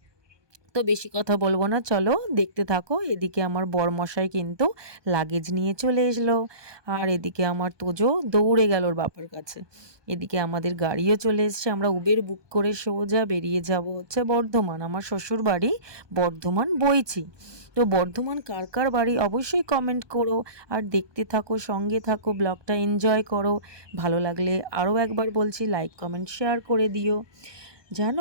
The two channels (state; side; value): late; left; 1.2 ms